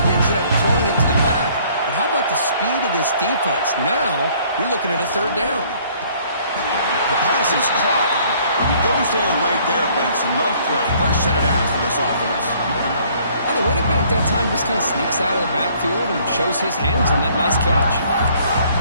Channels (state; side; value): inverted; both; correlation -0.60